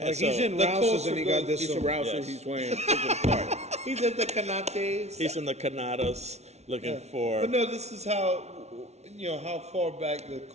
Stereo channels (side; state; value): left; late; 0.31 ms